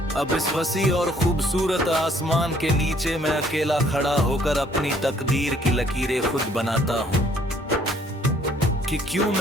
अब इस वसी और खूबसूरत आसमान के नीचे मैं अकेला खड़ा होकर अपनी तकदीर की लकीरें खुद बनाता हूँ कि क्यों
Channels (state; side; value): normal; both; correlation 0.62